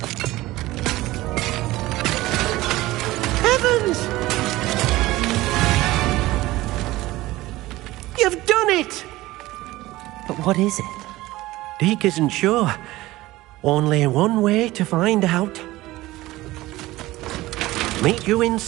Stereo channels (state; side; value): quieter; left; 18.0 dB